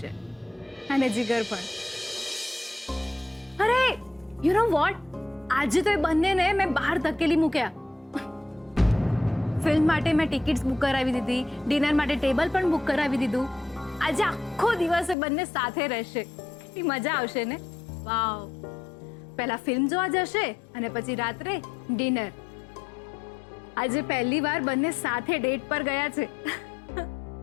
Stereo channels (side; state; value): right; drops out; at 15.2 s